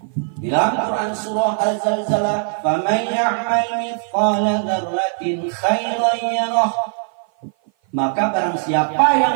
Di dalam Quran surah Al-Zalzalah, "Faman ya'mal mithqala dzarratin khairan yarah." Maka barang siapa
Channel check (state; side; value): silent; left; 56 dB below the other